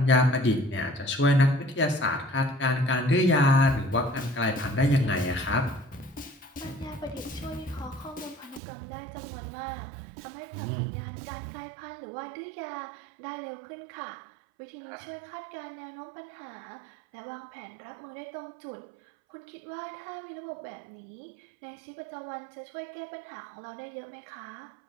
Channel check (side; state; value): left; drops out; at 8.6 s